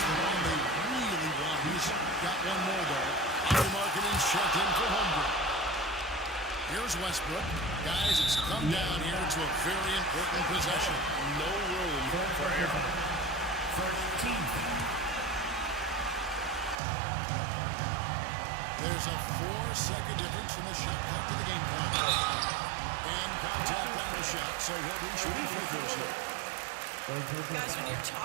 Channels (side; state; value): left; drops out; at 16.8 s